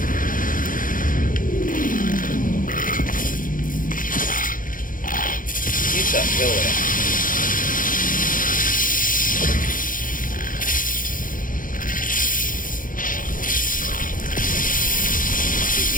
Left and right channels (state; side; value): late; right; 0.40 ms